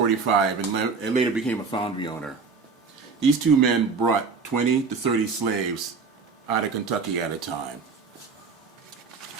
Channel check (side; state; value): left; quieter; 4.9 dB